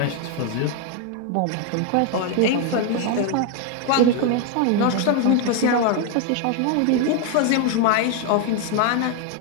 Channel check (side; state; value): both; different; correlation 0.01